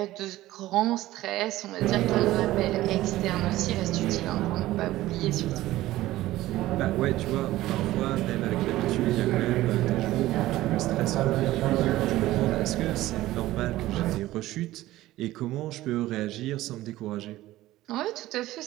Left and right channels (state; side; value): quieter; left; 16.1 dB